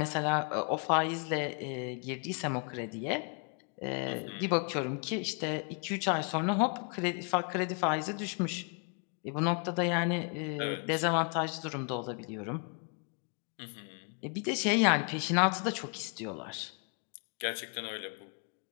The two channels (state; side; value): quieter; right; 39.1 dB